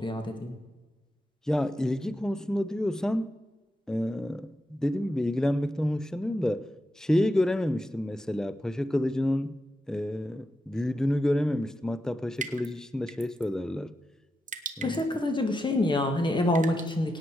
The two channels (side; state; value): both; normal; correlation 0.88